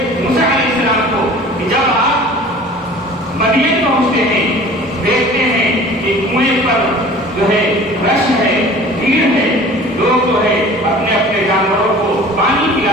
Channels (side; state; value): both; normal; correlation 0.44